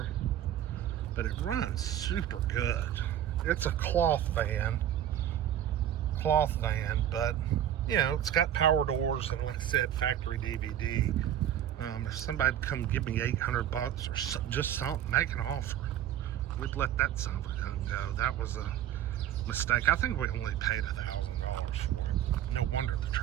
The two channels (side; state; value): left; quieter; 10.9 dB